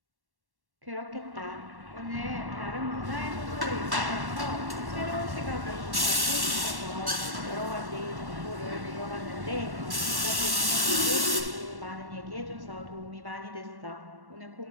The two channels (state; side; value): late; left; 1.1 ms